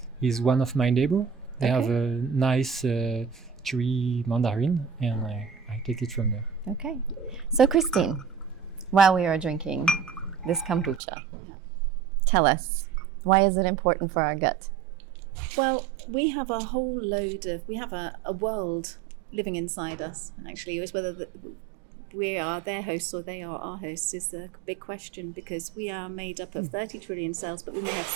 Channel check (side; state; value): left; drops out; at 11.0 s